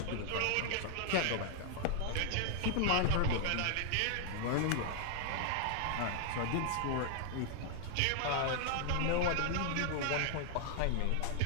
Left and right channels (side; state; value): both; different; correlation 0.00